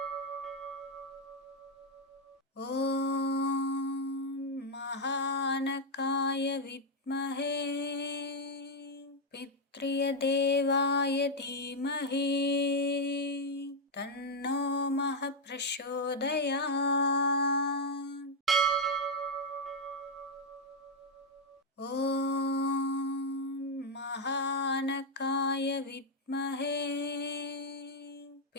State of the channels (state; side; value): normal; both; correlation 0.01